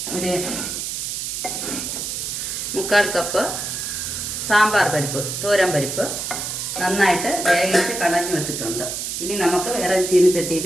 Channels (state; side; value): noise; right; hiss, 4 dB below the sound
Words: ഒരു 1/4 കപ്പ് സാമ്പാർ പരിപ്പ്, തോരൻ പരിപ്പ് നന്നായിട്ട് വേവിച്ച് കടഞ്ഞു വെച്ചിട്ടുണ്ട്. ഇനി നമുക്ക് വേറെ